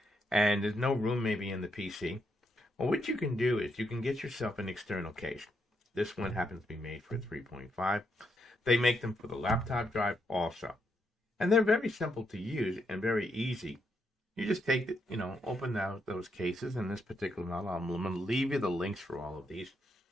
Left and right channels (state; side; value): normal; both; correlation 0.79